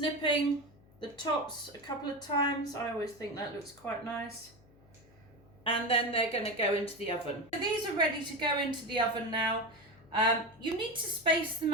the tops a couple of times. I always think that looks quite nice. And then they're going to go into the oven. So these are ready to go into the oven now. You need to space them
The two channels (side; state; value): left; noise; hum, 27 dB below the sound